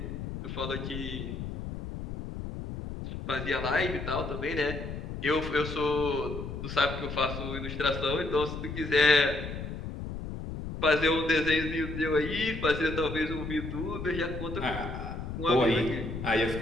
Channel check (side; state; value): left; noise; rumble, 7 dB below the sound